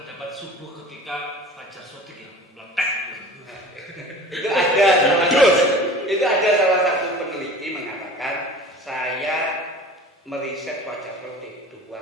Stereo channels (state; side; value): normal; both; correlation 0.41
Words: subuh ketika fajar sodik yang meletak. itu ada salah satu peneliti mengatakan saya meriset fajar sodik 2